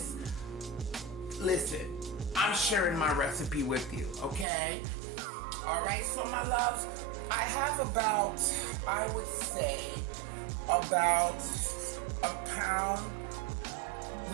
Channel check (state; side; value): drops out; left; at 4.5 s